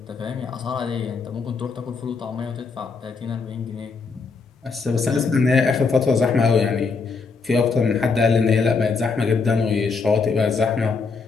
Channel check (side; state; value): right; quieter; 4.7 dB